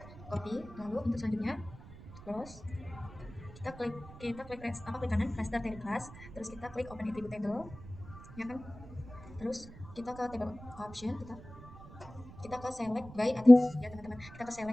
lalu untuk selanjutnya close, kita klik klik kanan raster table class, terus kita klik open attribute table ya kan, terus kita ke table option, kita ke select by attribute ya teman-teman, kita ke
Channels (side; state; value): right; noise; rumble, 17 dB below the sound